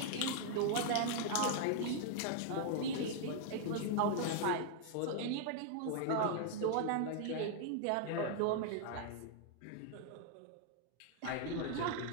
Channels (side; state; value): both; different; correlation 0.00